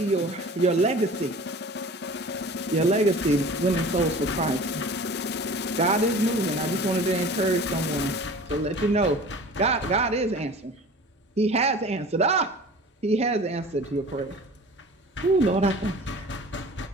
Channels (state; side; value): normal; both; correlation 0.41